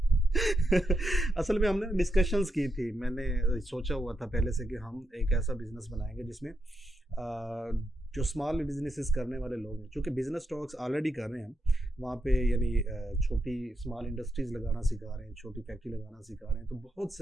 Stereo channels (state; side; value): normal; both; correlation 0.84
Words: असल में हमने डिस्कशंस की थी, मैंने सोचा हुआ था पहले से कि हम एक ऐसा बिजनेस बनाएंगे जिसमें जो स्मॉल बिजनेसेस करने वाले लोग हैं, चूँकि बिजनेस टॉक्स ऑलरेडी कर रहे हैं हम वहाँ पे, यानी छोटी स्मॉल इंडस्ट्रीज़ लगाना सिखा रहे हैं, छोटी फैक्ट्री लगाना सिखा रहे हैं, तो बहुत